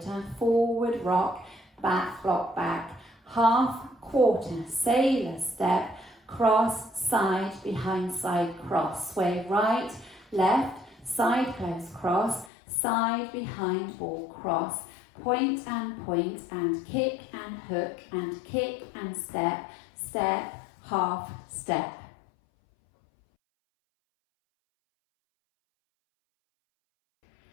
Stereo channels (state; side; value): drops out; right; at 12.5 s